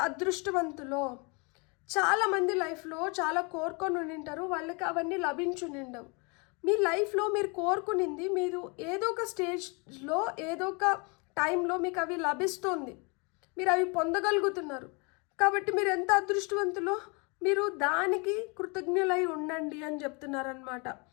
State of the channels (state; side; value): quieter; right; 31.5 dB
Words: అదృష్టవంతులో. చాలామంది లైఫ్లో చాలా కోరుకొని ఉండింటారు, వాళ్ళకి అవన్నీ లభించునిండవు. మీ లైఫ్లో మీరు కోరుకునింది మీరు ఏదో ఒక స్టేజ్లో ఏదో ఒక టైంలో మీకు అవి లభిస్తుంది, మీరు అవి పొందగలుగుతున్నారు. కాబట్టి మీరు ఎంత అదృష్టవంతులో, మీరు దానికి కృతజ్ఞులై ఉండండి అని చెప్తున్నారనమాట.